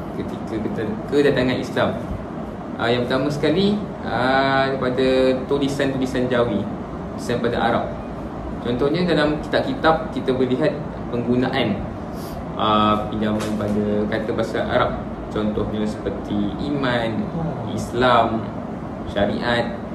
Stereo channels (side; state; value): both; identical; correlation 1.00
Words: ketika kedatangan Islam. Yang pertama sekali daripada tulisan-tulisan Jawi, tulisan pada Arab. Contohnya dalam kitab-kitab kita boleh lihat penggunaan pinjaman pada kata bahasa Arab. Contohnya seperti iman, Islam, syariat,